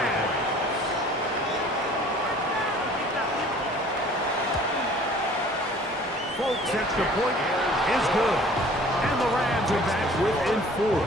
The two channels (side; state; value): both; normal; correlation 0.50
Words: Folks, extra point is good. And the Rams are back within 4.